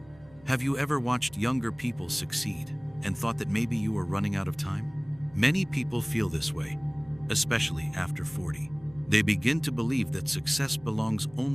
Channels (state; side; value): noise; right; hum, 26 dB below the sound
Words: Have you ever watched younger people succeed and thought that maybe you were running out of time? Many people feel this way, especially after 40. They begin to believe that success belongs